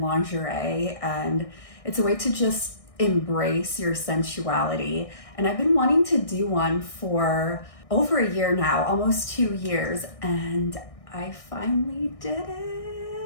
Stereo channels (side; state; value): right; late; 1.6 ms